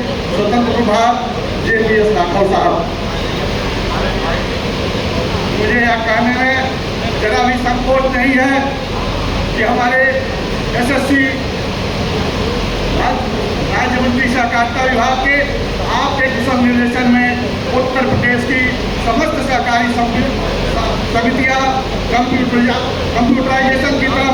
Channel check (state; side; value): identical; both; correlation 1.00